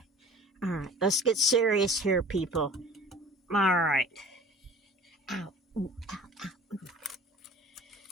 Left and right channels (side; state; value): both; normal; correlation 0.45